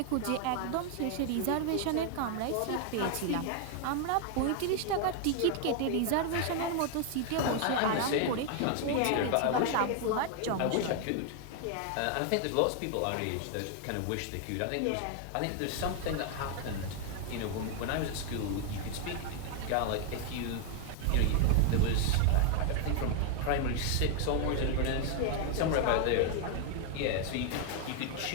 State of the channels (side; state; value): both; different; correlation 0.00